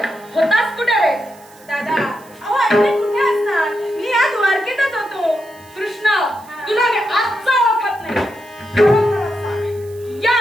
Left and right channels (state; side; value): noise; right; hiss, 25 dB below the sound